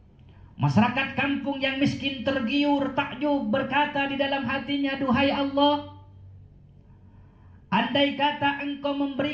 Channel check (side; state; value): both; identical; correlation 1.00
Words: Masyarakat kampung yang miskin tergiur, takjub, berkata di dalam hatinya, duhai Allah, andai kata engkau